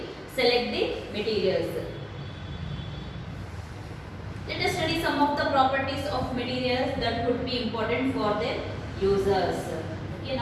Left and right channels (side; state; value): both; identical; correlation 1.00